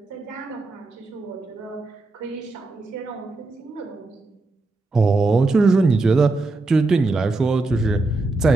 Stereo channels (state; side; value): quieter; left; 3.2 dB